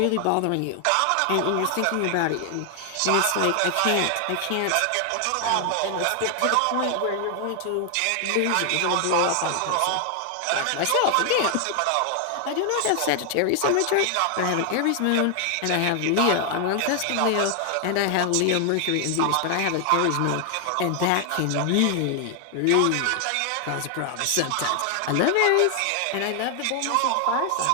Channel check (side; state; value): both; different; correlation 0.00